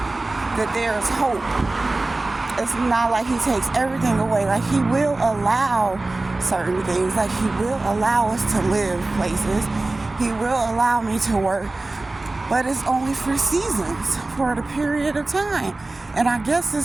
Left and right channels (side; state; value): left; quieter; 3.1 dB